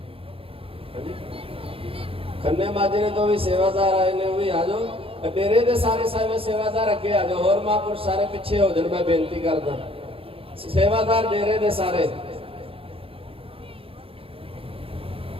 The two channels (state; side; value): late; left; 0.27 ms